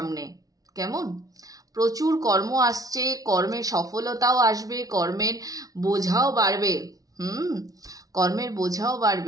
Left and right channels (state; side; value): late; left; 0.18 ms